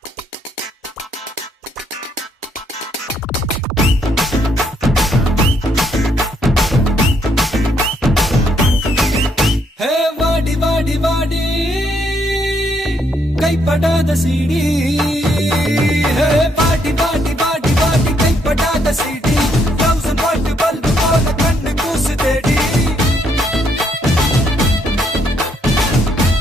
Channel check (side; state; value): both; normal; correlation 0.72